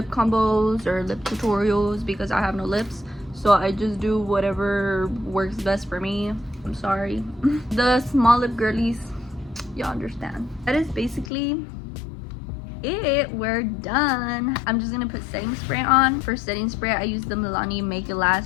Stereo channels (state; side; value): drops out; right; at 11.3 s